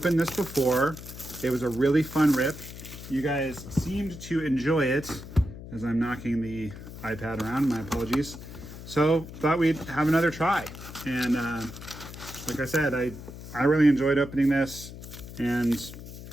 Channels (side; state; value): left; noise; hum, 13 dB below the sound